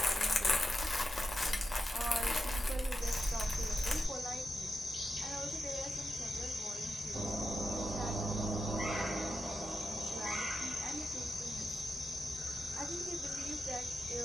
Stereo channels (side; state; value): both; normal; correlation 0.88